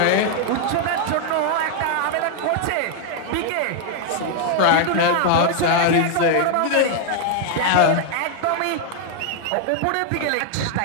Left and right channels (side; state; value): both; different; correlation 0.00